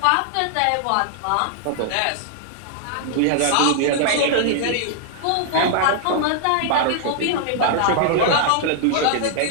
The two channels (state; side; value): different; both; correlation 0.00